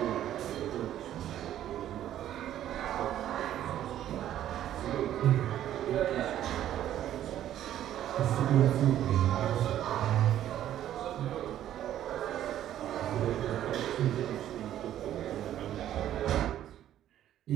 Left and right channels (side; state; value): left; quieter; 11.8 dB